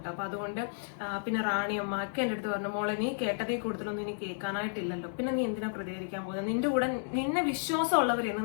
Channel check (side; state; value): right; silent; digital silence